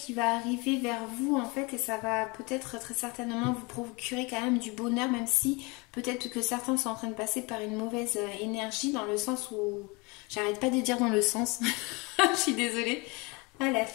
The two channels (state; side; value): quieter; right; 27.4 dB